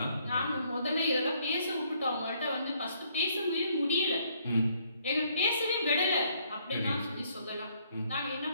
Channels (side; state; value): both; inverted; correlation -0.67